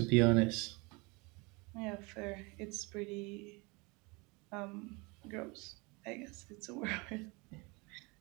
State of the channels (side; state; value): left; quieter; 27.5 dB